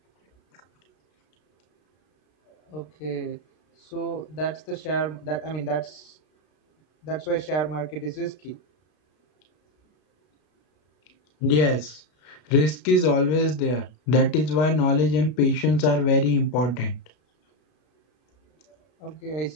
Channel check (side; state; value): right; late; 33 ms